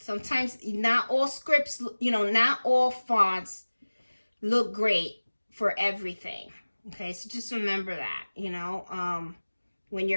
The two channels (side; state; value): both; inverted; correlation -1.00